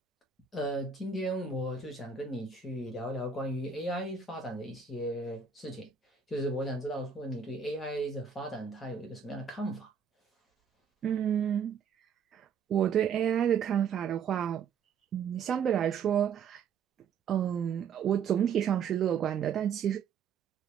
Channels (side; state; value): left; quieter; 6.6 dB